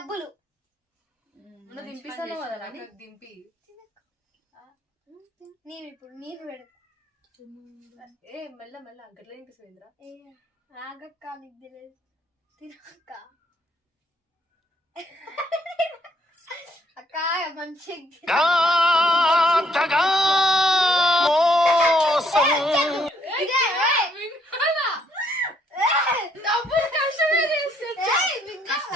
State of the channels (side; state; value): both; normal; correlation 0.69